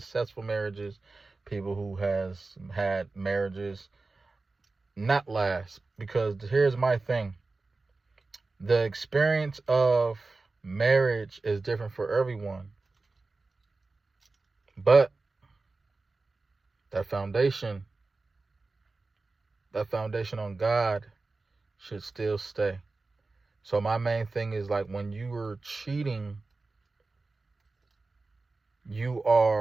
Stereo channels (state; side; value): quieter; left; 3.6 dB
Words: marriages, people who has had marriages not last. Because here's my thing. The experience of marriage is different for everyone. But that foundation on God should still stay. So my main thing is, like, when you are cheating, you